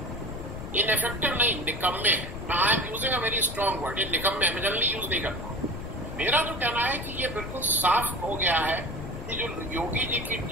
इनएफेक्टिव नहीं, निकम्मे हैं। I am using a very strong word, ये निकम्मे, मैं जनरली यूज नहीं करता हूं। मेरा जो कहना है कि ये बिल्कुल साफ हो गया है कि जो योगी जी की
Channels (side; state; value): left; noise; rumble, 8 dB below the sound